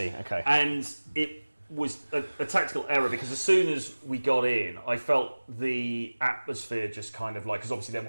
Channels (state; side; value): inverted; both; correlation -1.00